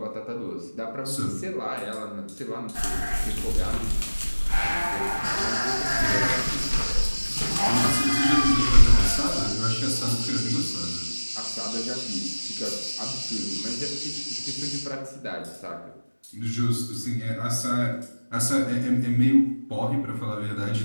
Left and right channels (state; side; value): inverted; both; correlation -1.00